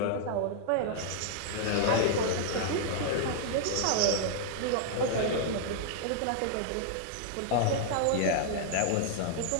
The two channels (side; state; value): both; different; correlation -0.01